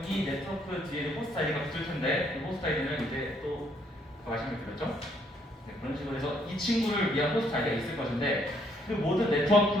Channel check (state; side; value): normal; both; correlation 0.69